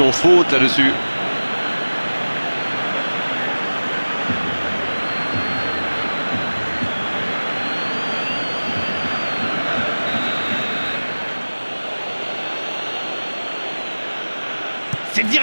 faute là-dessus. C'est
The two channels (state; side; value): inverted; both; correlation -1.00